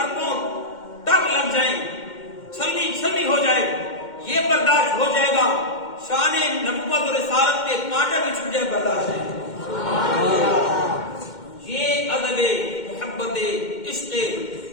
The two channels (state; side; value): late; right; 2.1 ms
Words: اربوں ٹک لگ جائیں، چھلنی ہو جائے، یہ برداشت ہو جائے گا، شان نبوت اور رسالت پہ کانٹا بھی چھپ جائے، برداشت ہے۔ یہ ادب محبت عشق